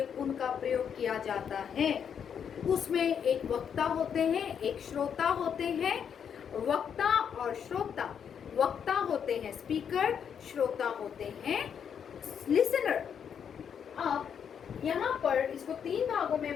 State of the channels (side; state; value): right; quieter; 7.8 dB